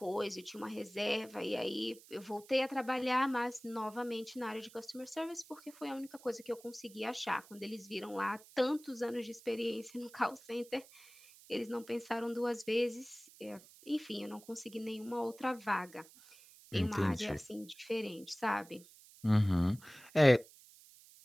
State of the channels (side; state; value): right; noise; hiss, 22 dB below the sound